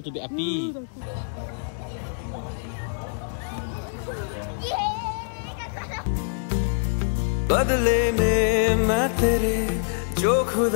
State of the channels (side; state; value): right; silent; digital silence